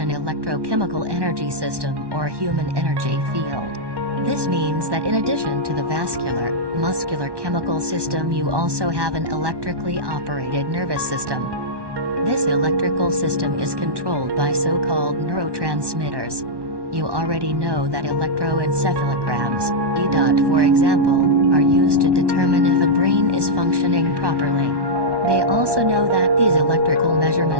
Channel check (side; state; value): left; late; 1.1 ms